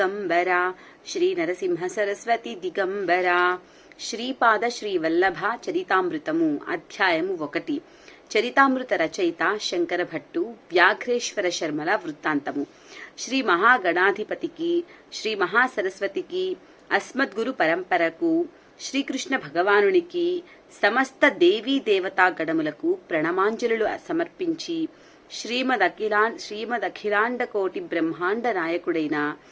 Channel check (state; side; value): identical; both; correlation 1.00